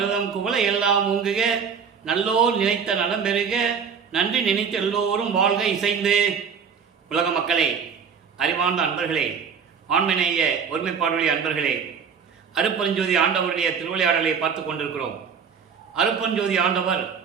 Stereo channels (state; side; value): quieter; left; 6.5 dB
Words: குவளை எல்லாம் ஊங்குக, நல்லோர் நினைத்த நலம் பெறுக, நன்றி நினைத்த எல்லோரும் வாழ்க இசைந்து. உலக மக்களே, அறிவார்ந்த அன்பர்களே, ஆண்மநேய ஒருமைப்பாடுடைய அன்பர்களே, அருட்பெருஞ்சோதி ஆண்டவருடைய திருவிளையாடலை பார்த்து கொண்டிருக்கிறோம். அருட்பெருஞ்சோதி ஆண்டவர்